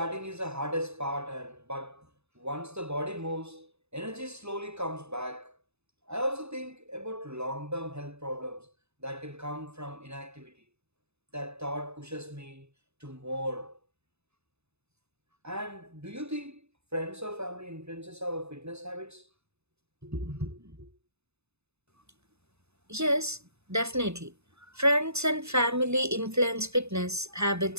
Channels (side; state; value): left; late; 0.80 ms